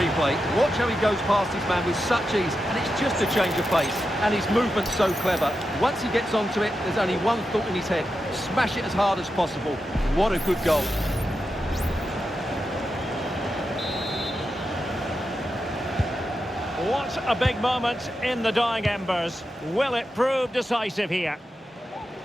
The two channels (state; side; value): normal; both; correlation 0.89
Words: Watch how he goes past his man with such ease, and it's just a change of pace. And his movement's so clever. Once he gets onto it, there's only one thought in his head. Smash it as hard as possible. What a good goal. What a big moment in the dying embers. Will it prove decisive here?